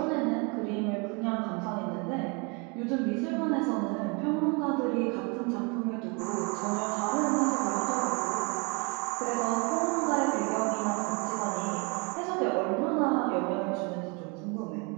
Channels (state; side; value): quieter; left; 31.8 dB